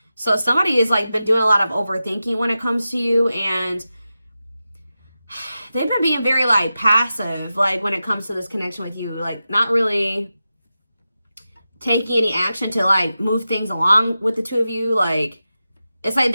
So somebody has been doing a lot of overthinking when it comes to you, and they've been being very passive when it comes to this connection with you, not really taking any action to move things along with the two of you. It's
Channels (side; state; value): both; inverted; correlation -0.92